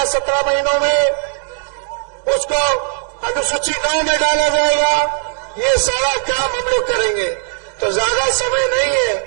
17 महीनों में, उसको अनुसूची 9 में डाला जाएगा। ये सारा काम हम लोग करेंगे। तो ज्यादा समय नहीं है,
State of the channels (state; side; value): silent; left; digital silence